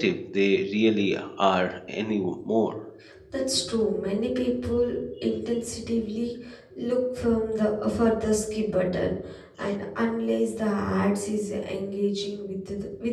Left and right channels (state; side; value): identical; both; correlation 1.00